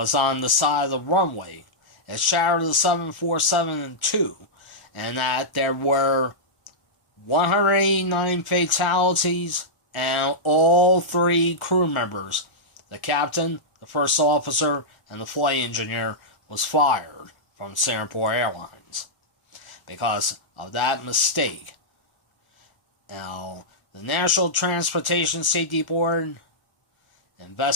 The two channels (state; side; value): late; right; 1.0 ms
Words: on the side of the runway. It shattered the 747 in two, and that there were 189 fatalities, and all 3 crew members, the captain, the first officer, and the flight engineer, was fired from Singapore Airlines because of that mistake. Now, the National Transportation Safety Board